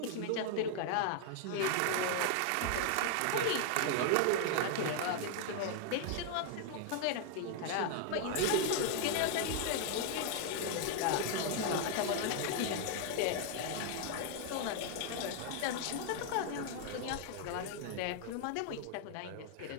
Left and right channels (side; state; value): both; different; correlation 0.00